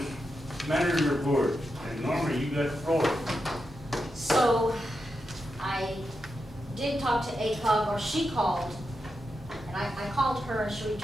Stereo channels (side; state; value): both; normal; correlation 0.87